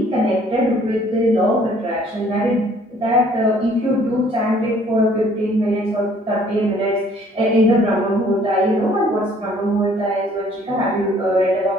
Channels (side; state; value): both; normal; correlation 0.58